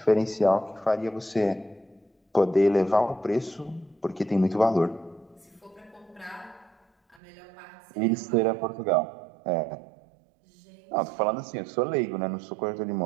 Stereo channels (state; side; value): drops out; left; at 7.2 s